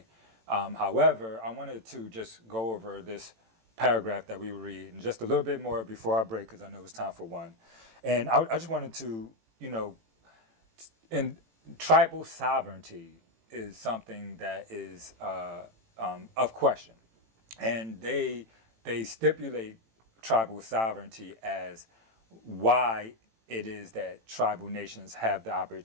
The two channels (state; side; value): late; left; 18 ms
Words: However, I wanted to just go over this paragraph that we read and just a little bit more before our break, because I know it's time for one. And I just wanted to, and tribal sovereignty is something that is of question. And they stipulate tribal sovereignty as why it is that tribal nations have the